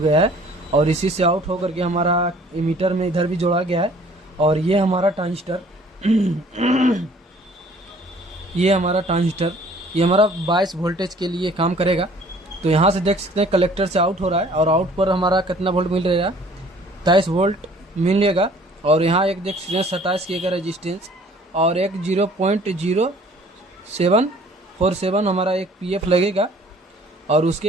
है, और इसी से आउट होकर के हमारा एमीटर में इधर भी जोड़ा गया है। और ये हमारा ट्रांजिस्टर ये हमारा 22 वोल्टेज के लिए काम करेगा। तो यहाँ से देख सकते हैं कलेक्टर से आउट हो रहा है, और आउट पर हमारा कितना वोल्ट मिल रहा है, 23 वोल्ट मिलेगा। और यहाँ एक देख सकते हैं 27K का रेजिस्टेंस, और एक 0.0747 हमारा एक PF लगेगा। और उसके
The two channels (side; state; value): both; normal; correlation 0.54